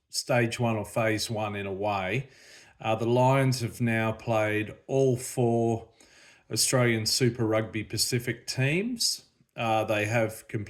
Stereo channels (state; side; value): identical; both; correlation 1.00